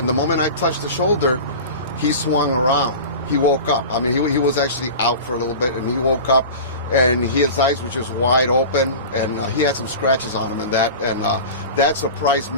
the moment I touched the shoulder, he swung around. He woke up. I mean, he was actually out for a little bit, and he woke up, and his eyes were just wide open, and he had some scratches on him, and that surprised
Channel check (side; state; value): both; inverted; correlation -0.33